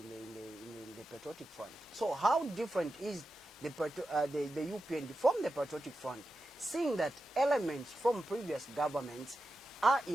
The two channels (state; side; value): normal; both; correlation 0.91